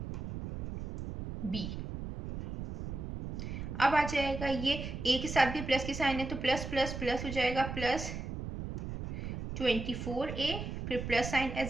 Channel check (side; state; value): right; noise; rumble, 6 dB below the sound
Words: बी। अब आ जाएगा ये ए के साथ भी प्लस की साइन है तो प्लस प्लस प्लस हो जाएगा प्लस 24a, फिर plus sign